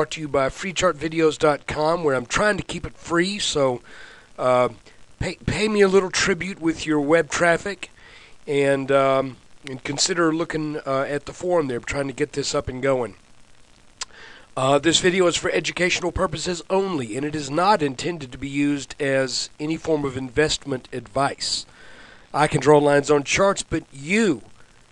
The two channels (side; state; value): both; identical; correlation 1.00